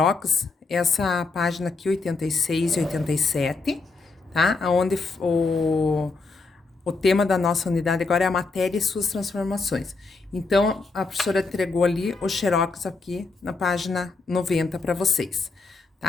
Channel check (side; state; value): right; quieter; 3.9 dB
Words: essa página aqui, 86 e 87, tá? Onde o tema da nossa unidade agora é a matéria e suas transformações. Então, a professora entregou ali o xerox aqui na página 90 para vocês,